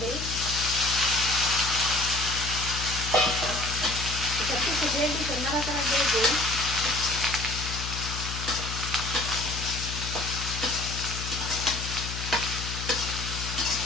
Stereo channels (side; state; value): left; noise; hum, 6 dB below the sound